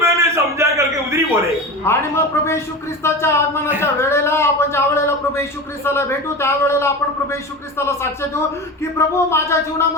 समझा करके उधरी बोले. आणि मग प्रभू येशू ख्रिस्ताच्या आगमनाच्या वेळेला आपण ज्या वेळेला प्रभू येशू ख्रिस्ताला भेटू त्यावेळेला आपण प्रभू येशू ख्रिस्ताला साक्ष देऊ की प्रभू माझ्या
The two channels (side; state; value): both; normal; correlation 0.28